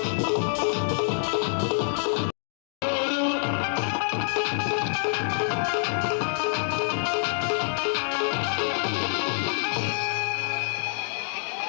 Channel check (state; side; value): silent; right; digital silence